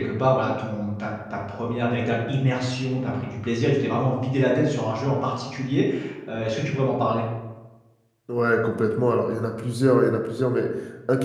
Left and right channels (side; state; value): both; identical; correlation 1.00